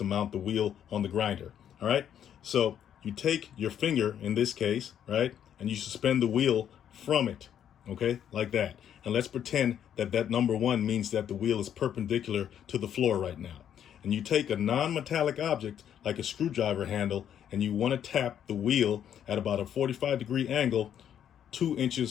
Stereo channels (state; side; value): quieter; right; 9.5 dB